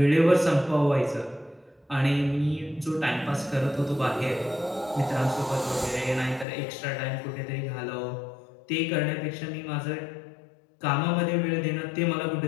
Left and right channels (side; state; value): right; drops out; at 6.5 s